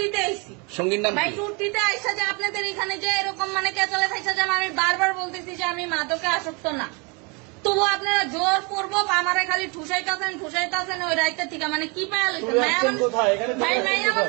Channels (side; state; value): left; quieter; 30.4 dB